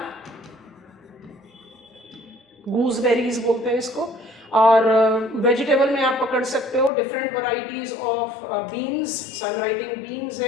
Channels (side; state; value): right; drops out; at 6.9 s